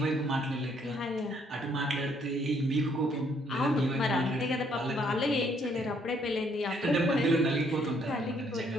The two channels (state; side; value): normal; both; correlation 0.67